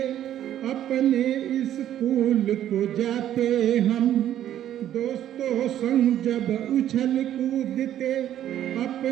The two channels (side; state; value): left; quieter; 11.5 dB